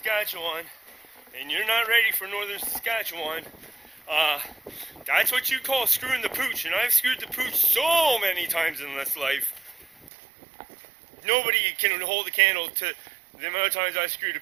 and you're not ready for northern Saskatchewan, that's what you call screwing the pooch, and I've screwed the pooch so many times in this life. Nobody can hold a candle to the amount of times I screwed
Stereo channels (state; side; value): drops out; left; at 10.1 s